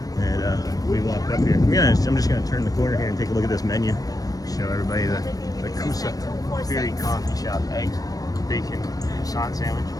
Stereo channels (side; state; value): right; late; 0.18 ms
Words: And we walked up here. I'm just going to turn the corner here and take a look at this menu. Show everybody the Safari Coffee Shop. Eggs, bacon, croissant sandwich,